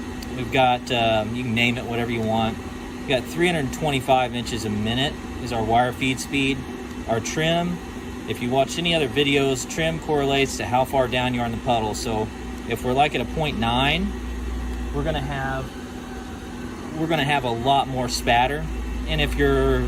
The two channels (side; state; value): both; identical; correlation 1.00